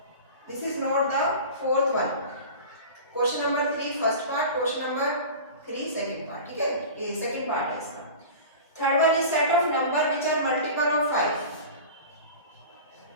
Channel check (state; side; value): inverted; both; correlation -0.35